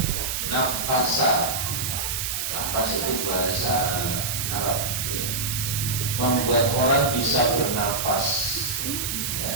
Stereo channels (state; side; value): noise; right; hiss, 2 dB below the sound